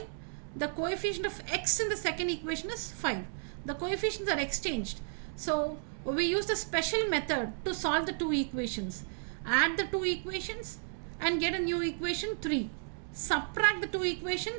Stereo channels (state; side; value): silent; left; digital silence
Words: The coefficient of x in the second equation is 5. The coefficients are exchanged. So we use the special method to solve the two equations. Add the two equations and get a new equation 3. Subtract the two